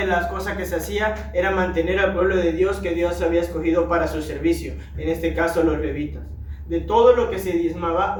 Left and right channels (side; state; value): both; identical; correlation 1.00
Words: las cosas que se hacía era mantener al pueblo de Dios que Dios había escogido para su servicio, en este caso los levitas. De todo lo que se diezmaba,